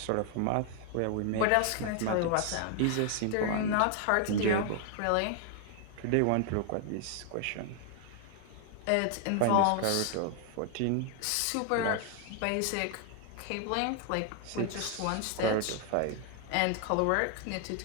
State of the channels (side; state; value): both; different; correlation 0.00